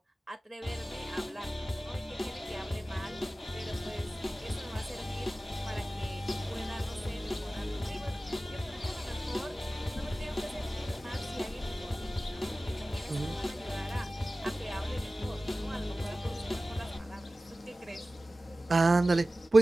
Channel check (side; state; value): both; normal; correlation 0.96